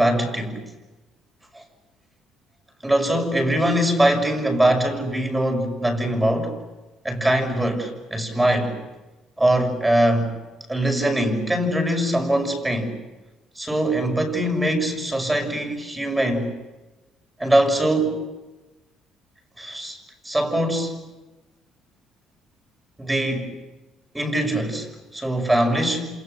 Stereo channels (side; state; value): both; normal; correlation 0.85